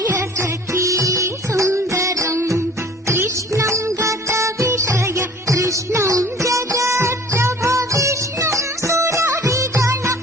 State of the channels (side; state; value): both; normal; correlation 0.48